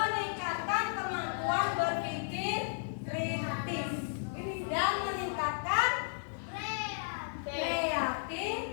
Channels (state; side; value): silent; right; digital silence